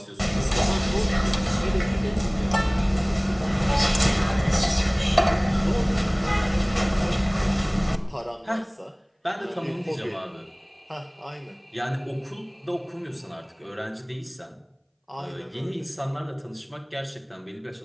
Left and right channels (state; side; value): identical; both; correlation 1.00